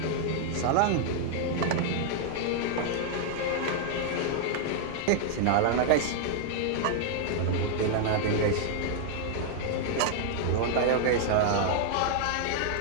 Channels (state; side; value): different; both; correlation -0.01